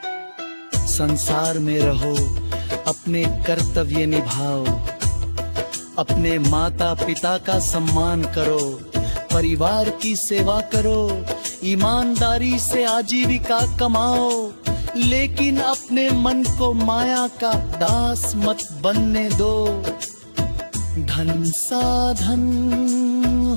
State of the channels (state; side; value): inverted; both; correlation -1.00